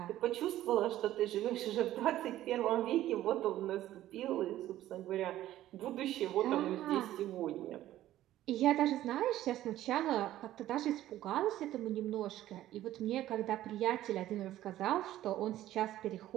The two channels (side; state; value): left; quieter; 13.8 dB